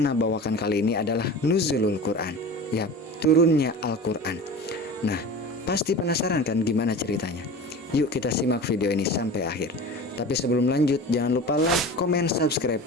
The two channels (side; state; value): both; normal; correlation 0.34